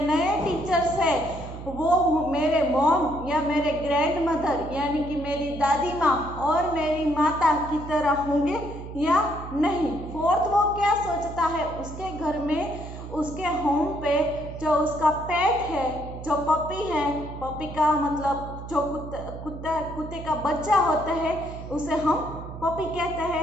नए टीचर्स हैं वो मेरे मॉम या मेरे ग्रैंड मदर यानी कि मेरी दादी माँ और मेरी माता की तरह होंगे या नहीं। फोर्थ वो क्या सोचता है, उसके घर में उसके होम पे जो उसका पेट है, जो पपी है, पपी का मतलब जो कुत्ते का बच्चा होता है उसे हम पपी कहते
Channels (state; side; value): noise; right; hum, 11 dB below the sound